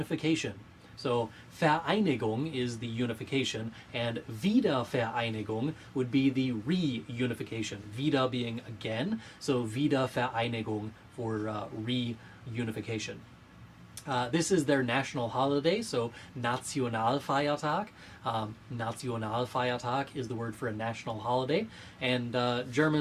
So Vereinigung is the unification, and Wiedervereinigung would be the reunification. Wieder being again, so Wiedervereinigung for reunification. This is their national holiday, so Nationalfeiertag. Nationalfeiertag is the word for a national holiday, and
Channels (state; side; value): identical; both; correlation 1.00